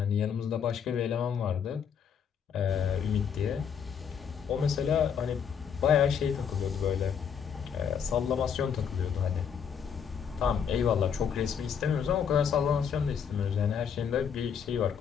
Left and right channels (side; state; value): right; quieter; 7.4 dB